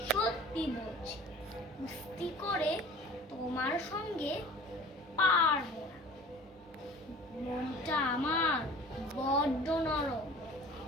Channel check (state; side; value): normal; both; correlation 0.43